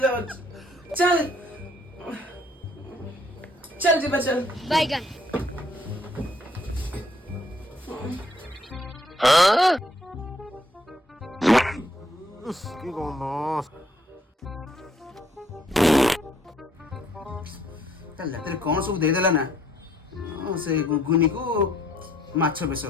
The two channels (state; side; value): normal; both; correlation 0.66